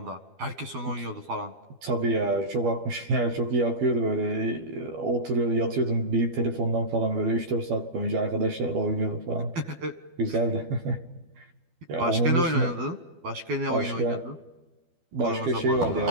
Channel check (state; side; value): late; left; 12 ms